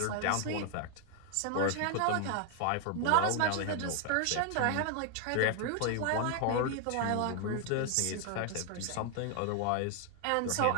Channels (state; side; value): different; both; correlation 0.00